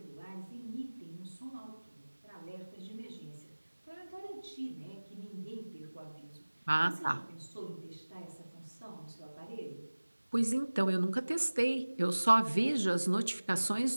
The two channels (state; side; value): inverted; both; correlation -1.00